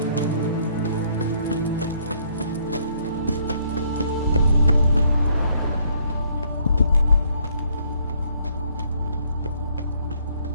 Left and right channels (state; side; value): inverted; both; correlation -0.65